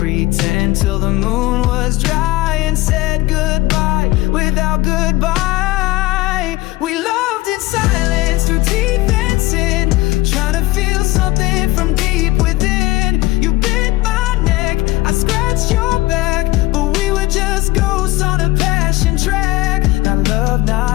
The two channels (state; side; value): quieter; right; 18.3 dB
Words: till the moon was dry and said goodbye without goodbye. We loved in silence through teeth and sin, trying to feel something from deep within. You bit my neck, I scratched your back, but we were just ghosts on a passion track. Not love,